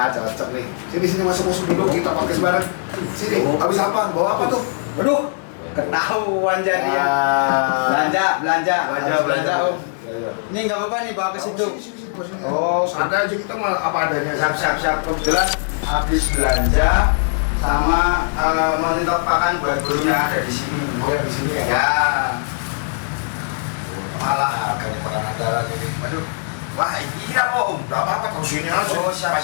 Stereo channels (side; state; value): right; silent; digital silence